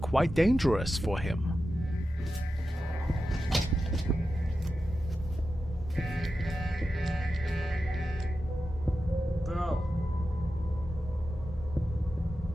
quite dangerous for him. Bro.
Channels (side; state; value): both; normal; correlation 0.91